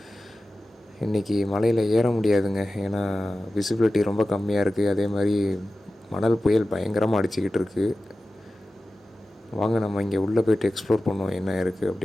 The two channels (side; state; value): both; normal; correlation 0.95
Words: இன்றைக்கி மலையில் ஏற முடியாதுங்க, ஏன்னா விசிபிலிட்டி ரொம்ப கம்மியாக இருக்குது. அதே மாதிரி மணல் புயல் பயங்கரமாக அடிச்சுக்கிட்டு இருக்குது. வாங்க நம்ம இங்கே உள்ளே போய்ட்டு எக்ஸ்ப்ளோர் பண்ணுவோம் என்ன இருக்குது